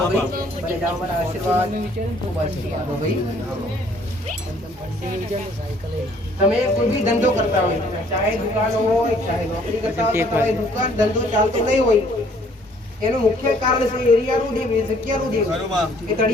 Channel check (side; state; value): both; normal; correlation 0.60